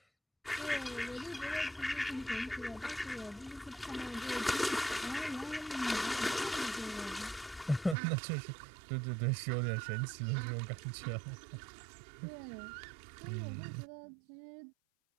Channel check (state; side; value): drops out; left; at 8.0 s